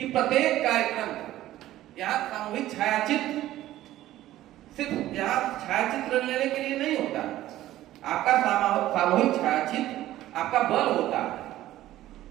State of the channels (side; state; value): left; quieter; 14.5 dB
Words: प्रत्येक कार्यक्रम, यहाँ सामूहिक छायाचित्र सिर्फ यहाँ छायाचित्र लेने के लिए नहीं होता, आपका सामूहिक छायाचित्र आपका बल होता है।